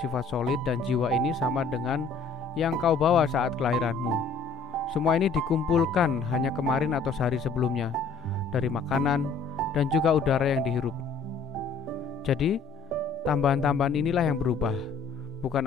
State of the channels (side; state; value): right; quieter; 4.6 dB